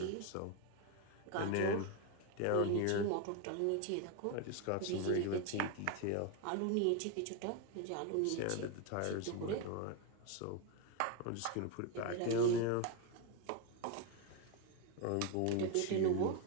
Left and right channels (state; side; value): different; both; correlation 0.02